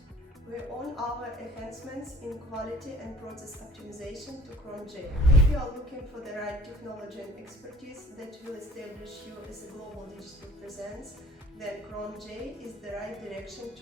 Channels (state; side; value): normal; both; correlation 0.51